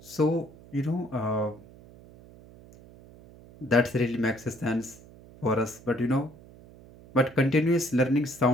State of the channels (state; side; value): noise; right; hum, 22 dB below the sound